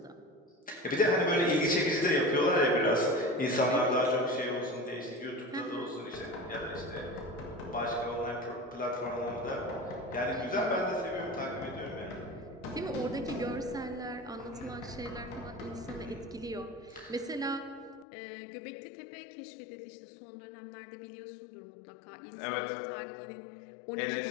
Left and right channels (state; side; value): drops out; right; at 18.1 s